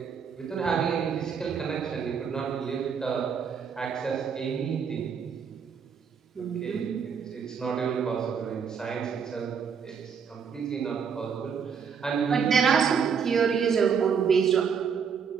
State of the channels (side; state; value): left; quieter; 6.7 dB